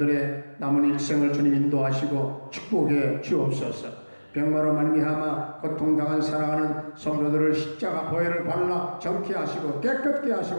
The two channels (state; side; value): inverted; both; correlation -1.00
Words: 남은 일생을 주님 인도하시고 축복해 주옵소서. 병마로 말미암아 고통당한 사랑하는 성도들을 십자가 보혈을 발라 정케 하시고 깨끗게